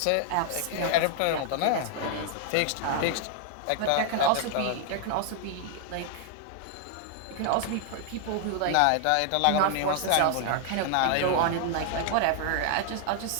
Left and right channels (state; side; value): different; both; correlation 0.00